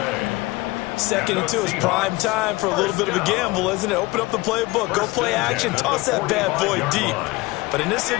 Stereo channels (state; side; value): quieter; right; 21.6 dB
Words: 2nd and 2 is prime time for a little bit of a gamble, isn't it? Open up the playbook, go play action, toss that bad boy deep. But in this